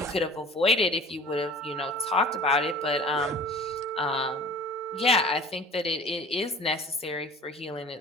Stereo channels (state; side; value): normal; both; correlation 0.44